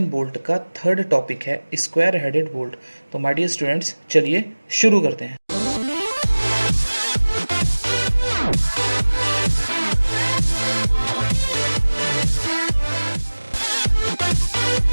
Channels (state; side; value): inverted; both; correlation -1.00